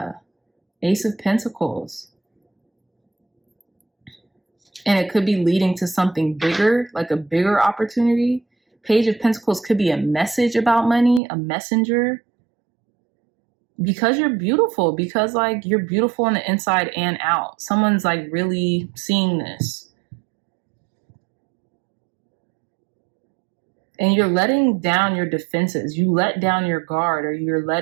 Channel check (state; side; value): drops out; left; at 11.2 s